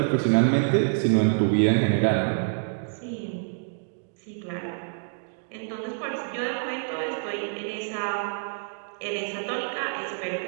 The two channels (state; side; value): silent; left; digital silence